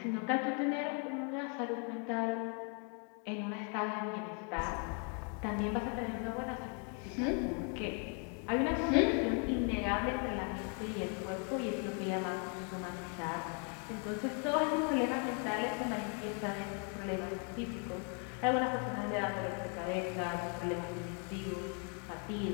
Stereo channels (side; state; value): right; quieter; 39.7 dB